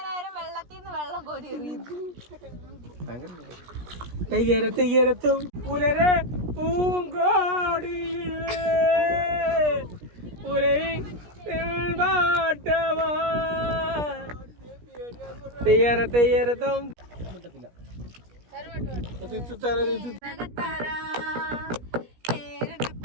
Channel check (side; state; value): left; late; 17 ms